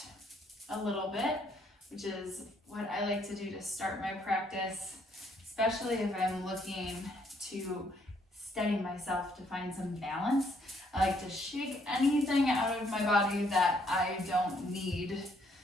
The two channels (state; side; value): normal; both; correlation 0.69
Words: a little bit, which is what I like to do to start my practice, especially if I'm looking to steady myself to find some balance. I like to shake anything out of my body that I don't need.